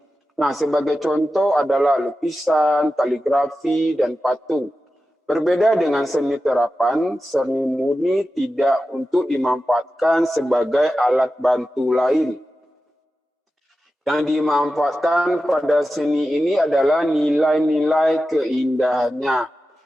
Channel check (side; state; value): both; normal; correlation 0.93